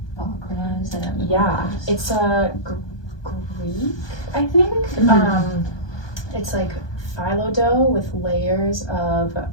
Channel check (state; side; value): late; right; 1.2 ms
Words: baklava is? yeah, it's a Greek, I think. It's like phyllo dough with layers of